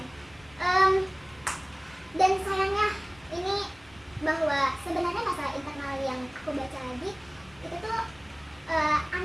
Dan sayangnya ini bahwa sebenarnya masalah internal yang aku baca lagi itu tuh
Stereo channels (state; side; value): noise; left; rumble, 26 dB below the sound